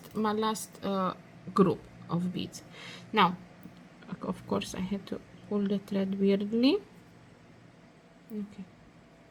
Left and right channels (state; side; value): identical; both; correlation 1.00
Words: group of beads. Now of course I had to pull the thread weirdly. Okay,